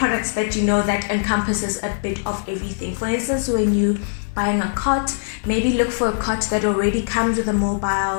that that encompasses a bit of everything. For instance, when you buying a cot, maybe look for a cot that already comes with a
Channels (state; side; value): silent; right; 57 dB below the other